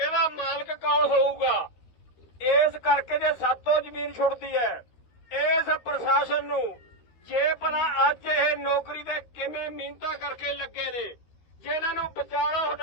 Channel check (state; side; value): late; right; 13 ms